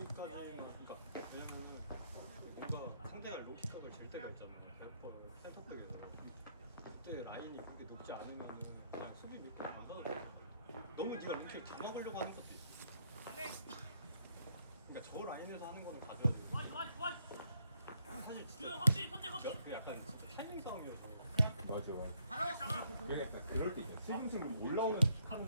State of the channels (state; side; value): inverted; both; correlation -0.71